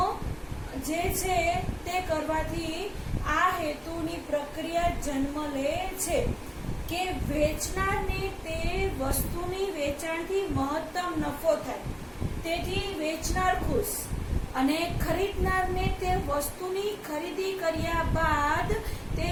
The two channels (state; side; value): identical; both; correlation 1.00